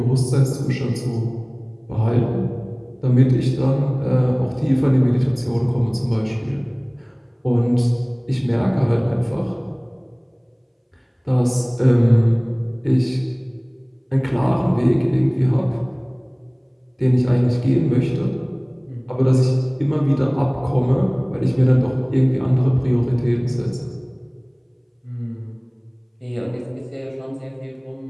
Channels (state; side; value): identical; both; correlation 1.00